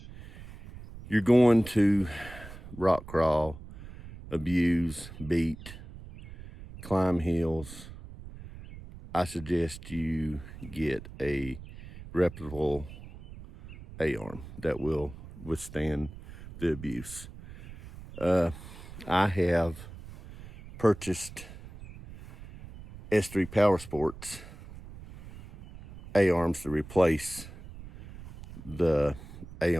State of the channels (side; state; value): right; noise; rumble, 15 dB below the sound